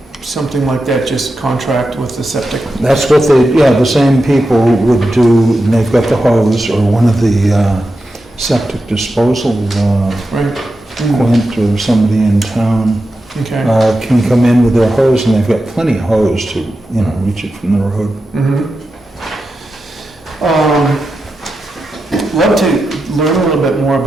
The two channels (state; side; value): normal; both; correlation 0.90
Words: something like that? Just contract with the septic? That's what the same people would do, and they've got the hose, or one of the septic disposal, Right. Quint or somebody in town, Okay. can come in with their hose, and they've got plenty of hose to, reach it from the road. Love to learn a little bit more